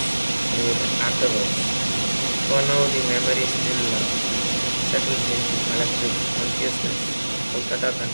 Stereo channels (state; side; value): inverted; both; correlation -1.00